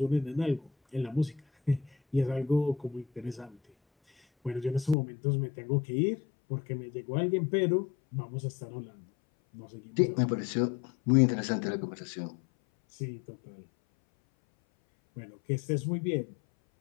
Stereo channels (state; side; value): drops out; right; at 5.0 s